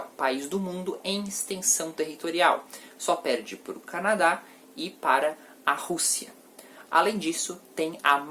país do mundo em extensão territorial. Só perde para o Canadá e para a Rússia. Além disso, tem a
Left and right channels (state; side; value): identical; both; correlation 1.00